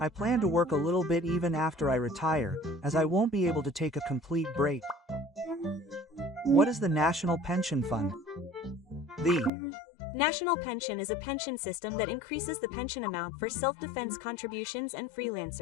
I plan to work a little bit even after I retire, as I won't be able to take a complete break. What is the National Pension Fund? The National pension is a pension system that increases the pension amount for self-defense contributions and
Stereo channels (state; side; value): drops out; right; at 9.5 s